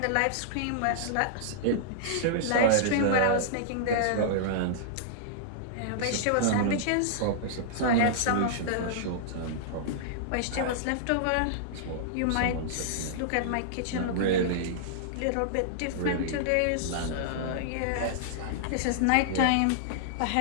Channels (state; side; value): different; both; correlation -0.02